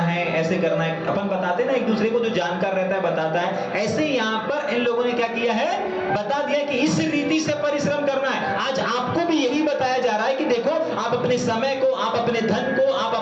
ऐसे करना है। अपन बताते ना एक दूसरे को, जो जानकार रहता है बताता है। ऐसे यहाँ पर इन लोगों ने क्या किया है? बता दिया कि इस रीति से परिश्रम करना है। आज आपको भी यही बताया जा रहा है कि देखो, आप अपने समय को, आप अपने धन को, आप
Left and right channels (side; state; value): both; identical; correlation 1.00